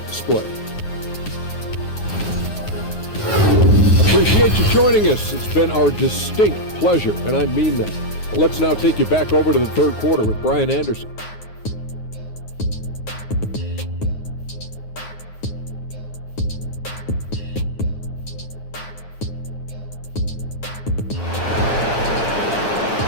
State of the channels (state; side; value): late; right; 9.5 ms